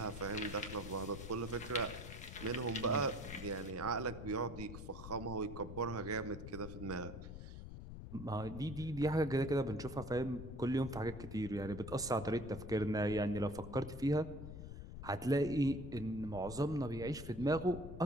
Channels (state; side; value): noise; left; rumble, 10 dB below the sound